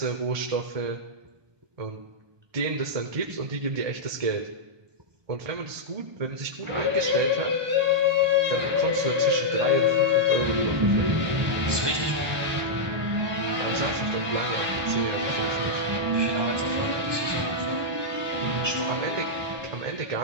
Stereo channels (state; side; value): late; left; 1.2 ms